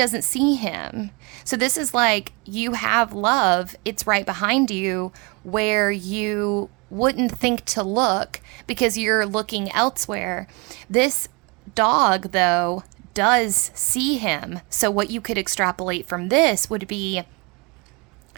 see him. So this is like, you have love. It's right behind you where you wouldn't think to look because you're looking elsewhere. This dog, though, does see him. So what you could extrapolate from this would be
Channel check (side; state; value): left; quieter; 29.1 dB